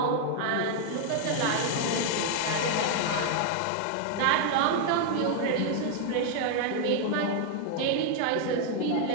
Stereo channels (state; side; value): different; both; correlation 0.00